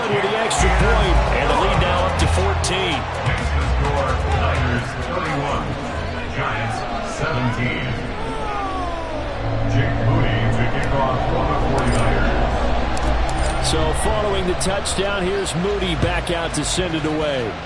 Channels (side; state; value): both; identical; correlation 1.00